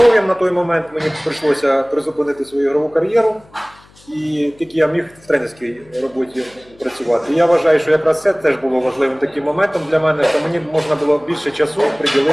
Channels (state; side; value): noise; left; hum, 28 dB below the sound